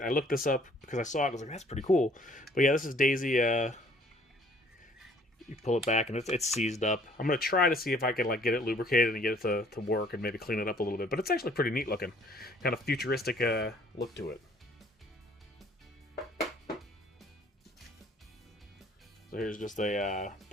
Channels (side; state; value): both; normal; correlation 0.58